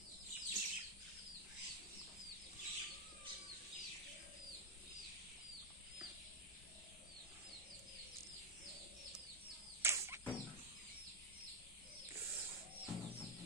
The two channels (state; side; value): normal; both; correlation -0.02